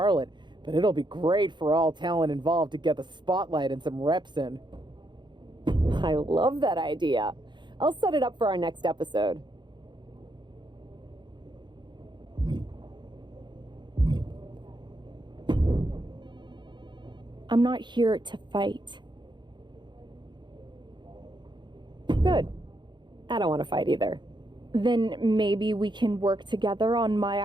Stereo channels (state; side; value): late; left; 0.22 ms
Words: but it'll be great for all talent involved to get the spotlight and some reps in. I love that idea. I'll set it up for our next episode. I'm not here to fight. Good. I don't want to fight either. Then maybe we can work together on my